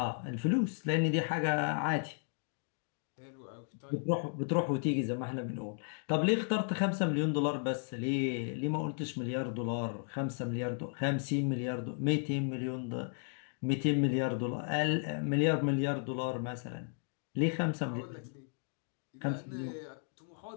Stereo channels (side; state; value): right; silent; 55 dB below the other